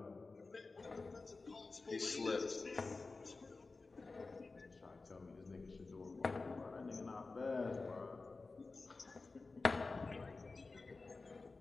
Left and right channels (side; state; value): right; quieter; 3.8 dB